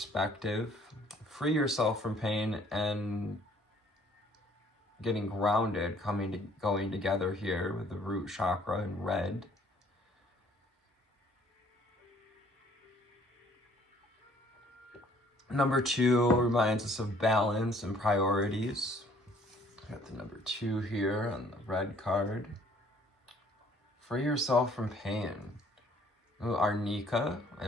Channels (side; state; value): both; normal; correlation 0.60